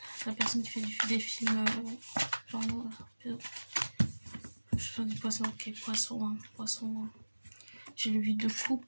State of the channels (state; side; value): inverted; both; correlation -1.00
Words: La personne qui fait des films porno. Je fais du poisson. Ok, poisson. Poisson. J'ai le 8 de